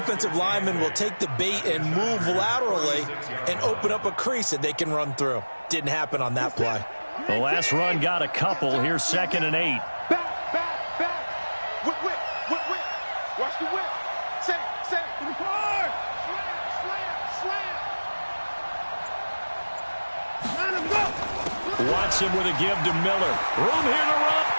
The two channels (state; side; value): inverted; both; correlation -1.00